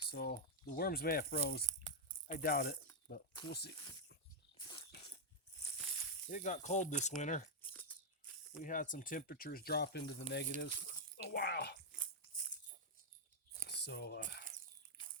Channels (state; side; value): normal; both; correlation -0.03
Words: the worms may have froze. I doubt it, but we'll see. It got cold this winter. We had some temperatures drop into the negatives a while. So